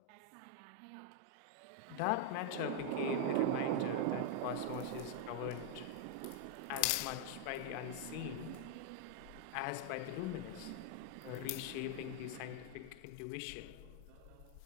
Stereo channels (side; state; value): both; different; correlation 0.00